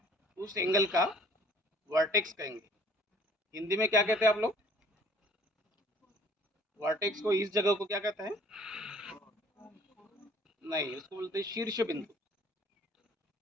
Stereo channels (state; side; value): normal; both; correlation 0.54